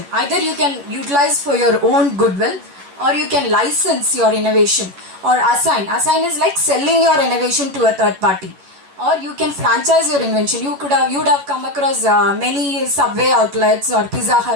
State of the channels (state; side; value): late; left; 11 ms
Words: Either you can utilize for your own goodwill, or you can license your innovation, or assign. Assign is like selling your innovation to a third party. Or you can franchise your invention. You would have come across many Subway outlets or Pizza